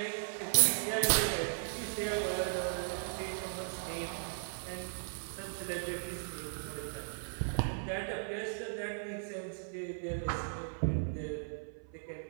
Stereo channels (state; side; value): silent; left; 53 dB below the other